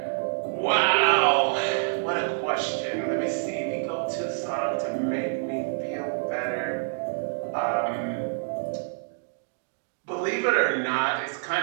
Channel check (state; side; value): silent; left; digital silence